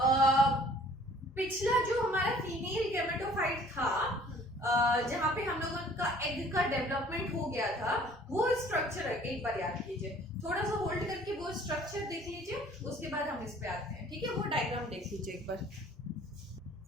पिछला जो हमारा फीमेल गैमेटोफाइट था, जहां पे हम लोगों का एग का डेवलपमेंट हो गया था, वो स्ट्रक्चर एक बार याद कीजिए, थोड़ा सा होल्ड करके वो स्ट्रक्चर देख लीजिए, उसके बाद हम इस पे आते हैं, ठीक है। वो डायग्राम देख लीजिए एक बार,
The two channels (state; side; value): normal; both; correlation 0.54